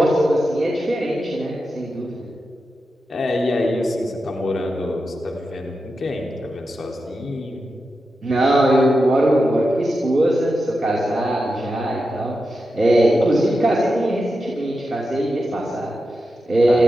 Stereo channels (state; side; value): normal; both; correlation 0.89